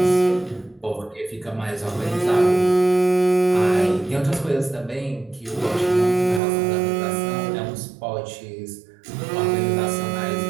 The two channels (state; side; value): drops out; left; at 6.4 s